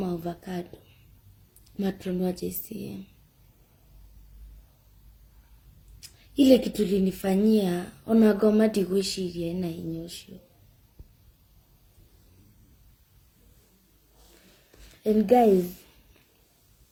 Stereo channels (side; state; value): both; identical; correlation 1.00